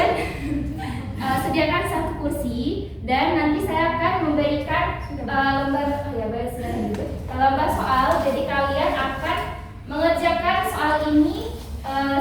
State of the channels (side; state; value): both; identical; correlation 1.00